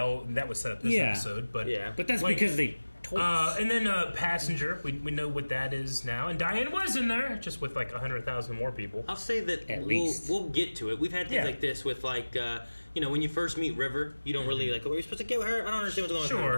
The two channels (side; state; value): both; inverted; correlation -1.00